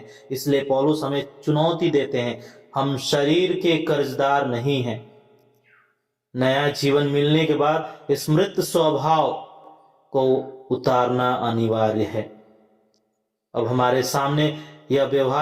इसलिए पौलुस हमें चुनौती देते हैं, हम शरीर के कर्जदार नहीं हैं। नया जीवन मिलने के बाद इस मृत स्वभाव को उतारना अनिवार्य है। अब हमारे सामने यह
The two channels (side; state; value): both; identical; correlation 1.00